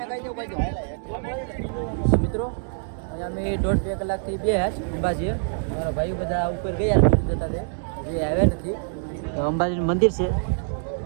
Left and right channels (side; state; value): left; silent; digital silence